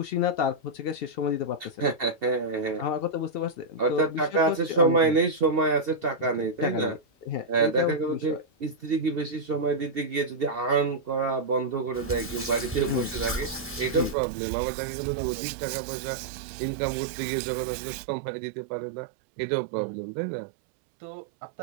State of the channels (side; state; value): left; drops out; at 14.2 s